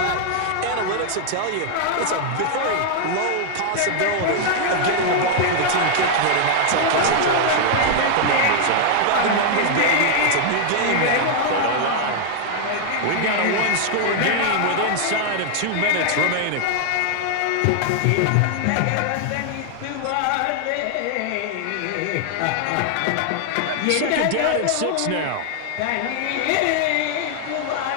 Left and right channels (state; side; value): different; both; correlation 0.00